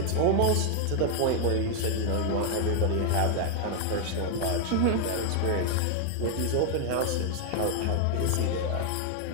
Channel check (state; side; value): different; both; correlation 0.00